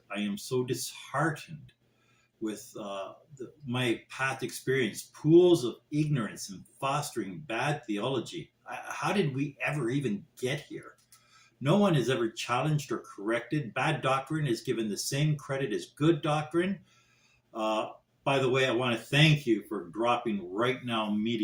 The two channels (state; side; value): identical; both; correlation 1.00